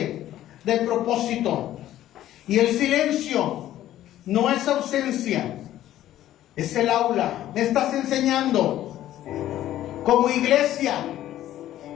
del propósito. Y el silencio no es ausencia, es el aula. Me estás enseñando. Como iglesia,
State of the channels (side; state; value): right; quieter; 13.1 dB